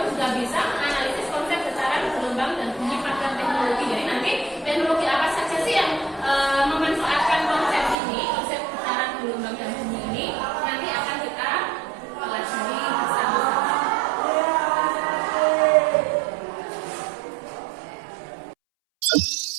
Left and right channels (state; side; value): drops out; left; at 8.0 s